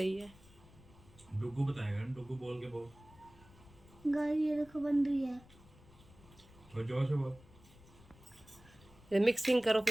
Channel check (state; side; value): noise; left; rumble, 24 dB below the sound